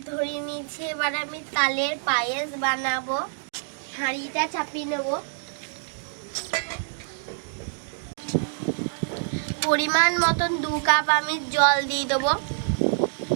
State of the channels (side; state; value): left; silent; digital silence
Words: ধরে নিয়েছি, এবার আমি তালের পায়েস বানাবো। হাঁড়িটা চাপিয়ে নেব। পরিমাণ মতন 2 কাপ আমি জল দিয়ে দেবো।